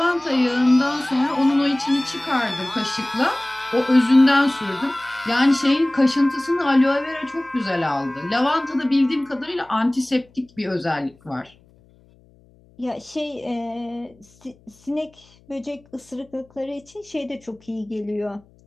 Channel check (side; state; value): left; noise; hum, 30 dB below the sound